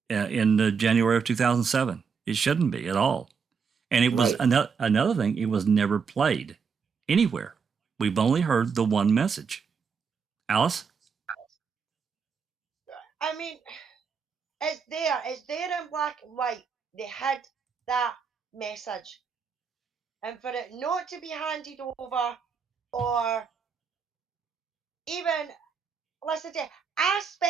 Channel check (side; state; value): left; quieter; 6.0 dB